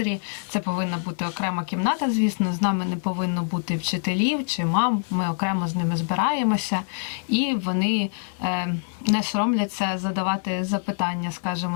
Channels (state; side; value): silent; right; 62 dB below the other